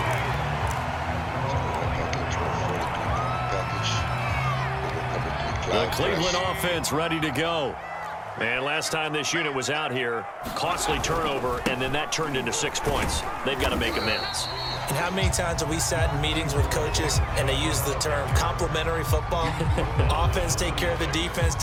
The Cleveland offense ready to go. And last time this unit was out here, costly turnover, and then that turned into 6 points. They've got to make amends. And how many times have we sat in meetings with coaches and they use the term complementary football? Offense take care of the defense,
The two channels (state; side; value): identical; both; correlation 1.00